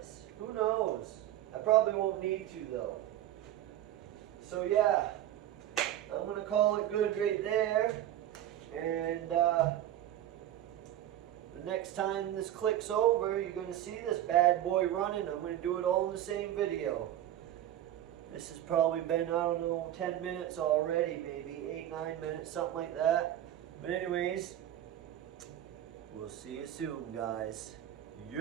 Who knows? I probably won't need to though. So yeah, I'm gonna call it good right there. And the next time this clicks over, you're going to see this bad boy running. I'm going to do it all in the same video. This has probably been, I don't know, 10 minutes already, maybe 8-9 minutes, something like that. But anyways, we'll see you soon, guys.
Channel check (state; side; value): quieter; left; 12.3 dB